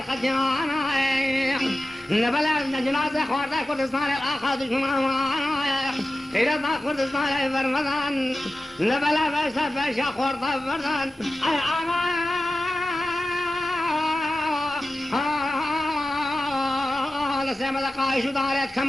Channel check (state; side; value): normal; both; correlation 0.94